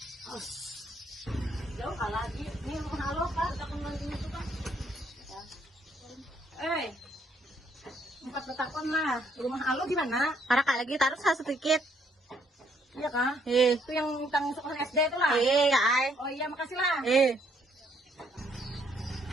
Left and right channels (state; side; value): normal; both; correlation 0.69